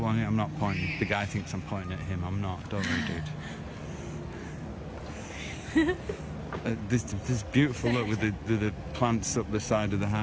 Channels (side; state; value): both; identical; correlation 1.00